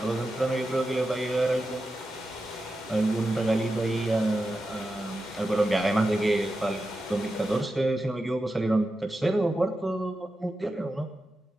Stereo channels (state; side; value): normal; both; correlation 0.90